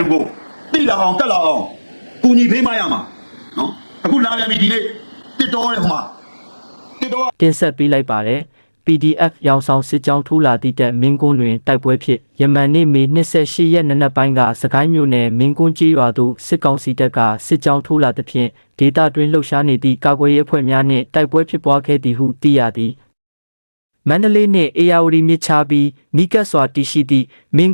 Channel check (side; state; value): both; inverted; correlation -1.00